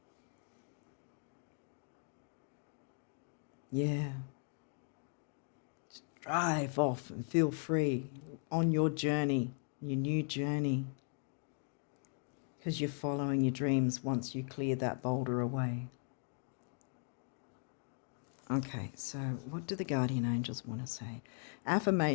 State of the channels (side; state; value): right; silent; 52 dB below the other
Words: Yeah. Just drive off and feel free on your journey, your new journey, because you're following your dreams once you clear that boulder away. Okay, so what do the guardian angels want to say?